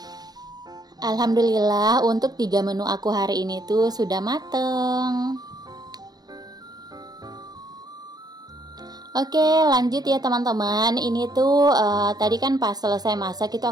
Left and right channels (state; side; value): late; left; 0.19 ms